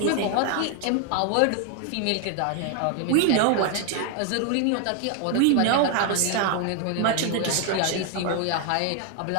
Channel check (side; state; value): both; different; correlation 0.00